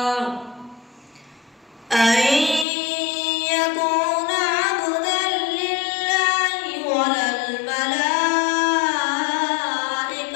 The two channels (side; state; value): right; drops out; at 2.7 s